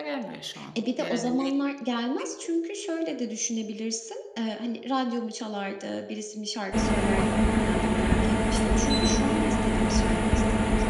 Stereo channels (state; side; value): identical; both; correlation 1.00